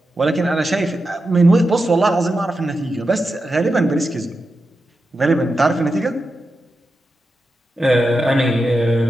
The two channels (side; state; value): both; normal; correlation 0.89